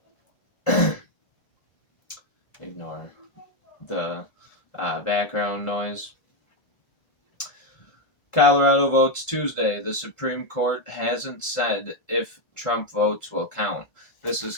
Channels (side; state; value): right; late; 1.5 ms